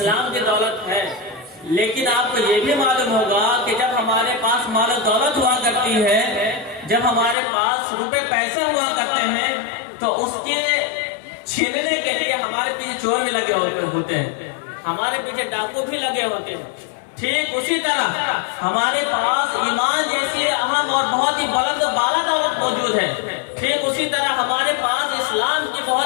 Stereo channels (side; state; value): right; drops out; at 7.4 s